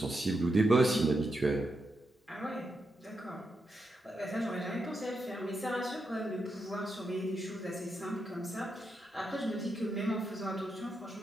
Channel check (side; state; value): both; normal; correlation 0.84